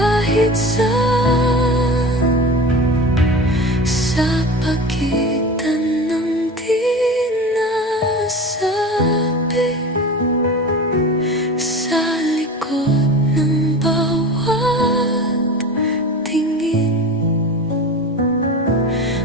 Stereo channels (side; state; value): both; normal; correlation 0.32